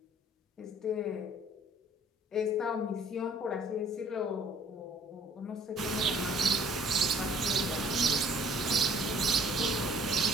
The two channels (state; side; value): normal; both; correlation 0.56